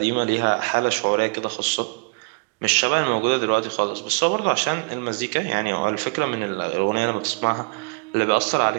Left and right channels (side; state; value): left; quieter; 32.8 dB